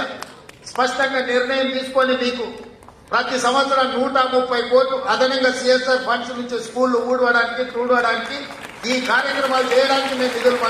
స్పష్టంగా నిర్ణయం తీసుకొని మీకు ప్రతి సంవత్సరం 130 కోట్లు అదనంగా సిఎస్ఆర్ ఫండ్స్ నుంచి స్కూళ్లు ఊడవడానికి చూడడానికి ఈ కార్యక్రమాలు చేయడానికి మేము నిధులు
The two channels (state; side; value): identical; both; correlation 1.00